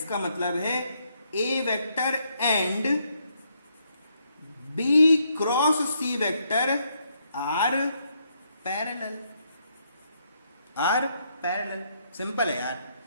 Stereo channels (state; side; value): inverted; both; correlation -0.75